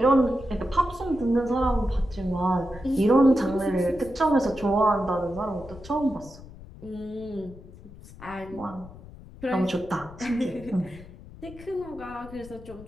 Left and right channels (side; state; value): left; noise; rumble, 17 dB below the sound